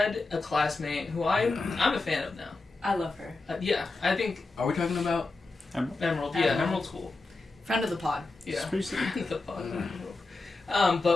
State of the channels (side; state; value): right; quieter; 3.5 dB